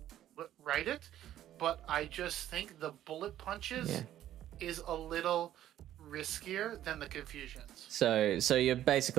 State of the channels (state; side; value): quieter; left; 12.3 dB